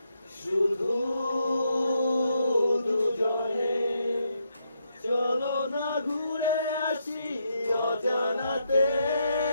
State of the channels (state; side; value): inverted; both; correlation -0.79